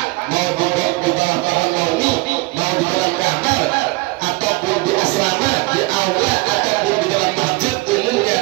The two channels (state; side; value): quieter; left; 23.6 dB